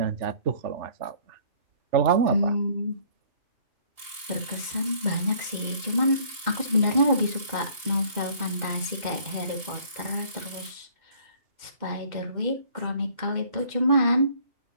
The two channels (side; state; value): left; late; 2.8 ms